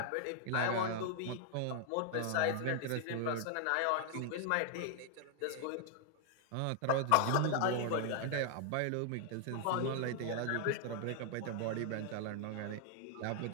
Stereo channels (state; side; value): different; both; correlation 0.00